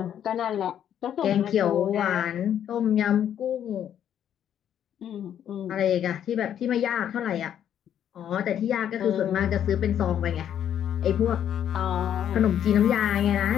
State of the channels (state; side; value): quieter; right; 9.8 dB